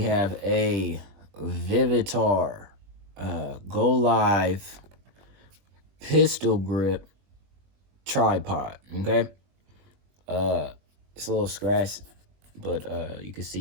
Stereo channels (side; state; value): left; late; 21 ms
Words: have a VIVITAR Go Live pistol grip tripod. Okay. It's a little scratched, but you can